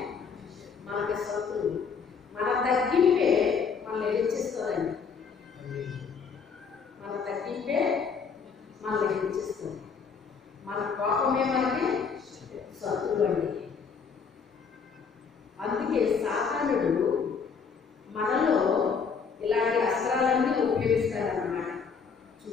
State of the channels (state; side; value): quieter; right; 5.8 dB